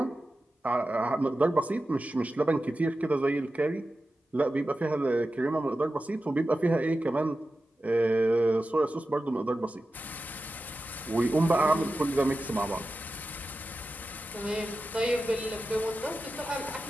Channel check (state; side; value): normal; both; correlation 0.93